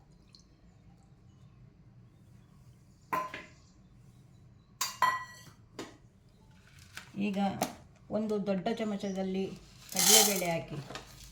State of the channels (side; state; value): both; identical; correlation 1.00